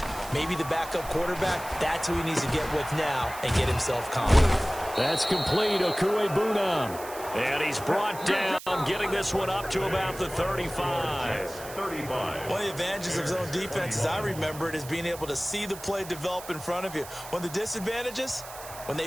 maybe the backup quarterback, that's who he needs to get with now and get himself confident. That's complete. Okuebunam. And he's brought down, getting this one up to about the 35. One of the advantages of zone defense, as I remember it, is being able to see the play develop in front of you. One of the disadvantages, when they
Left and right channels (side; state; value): right; noise; hiss, 14 dB below the sound